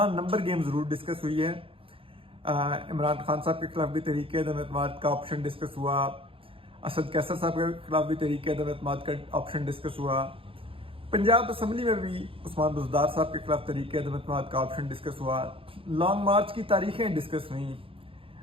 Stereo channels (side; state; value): left; late; 0.26 ms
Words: नंबर गेम ज़रूर डिस्कस हुई है। इमरान खान साहब के खिलाफ भी तहरीक अदम एतमाद का ऑप्शन डिस्कस हुआ, असद कैसर साहब के खिलाफ भी तहरीक अदम एतमाद का ऑप्शन डिस्कस हुआ, पंजाब असम्बली में भी उस्मान बुज़दार साहब के खिलाफ तहरीक अदम एतमाद का ऑप्शन डिस्कस हुआ। लॉन्ग मार्च की तारीखें डिस्कस हुई।